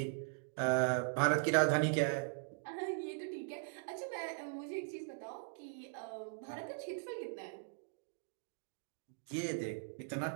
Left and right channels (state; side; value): silent; left; digital silence